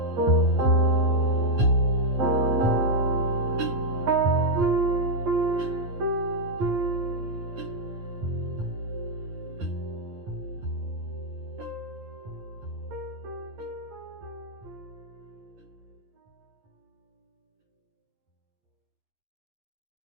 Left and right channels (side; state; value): left; late; 10 ms